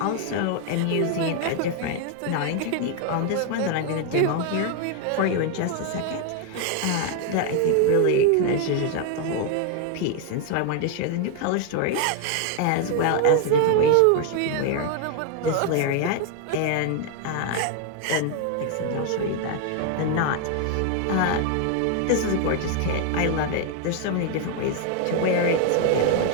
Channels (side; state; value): both; different; correlation 0.01